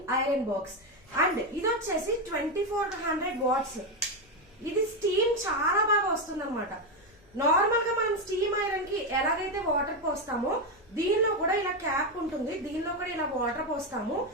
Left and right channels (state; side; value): noise; left; rumble, 29 dB below the sound